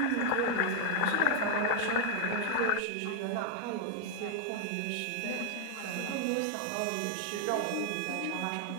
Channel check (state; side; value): different; both; correlation 0.00